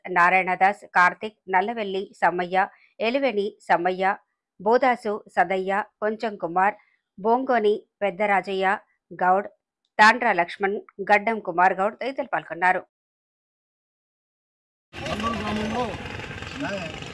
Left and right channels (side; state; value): both; identical; correlation 1.00